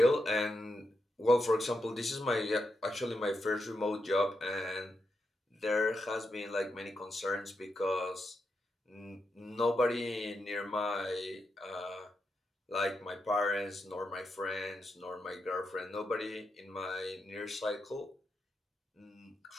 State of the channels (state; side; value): normal; both; correlation 0.85